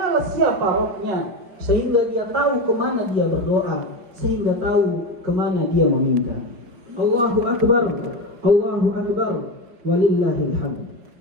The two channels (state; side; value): late; left; 5.4 ms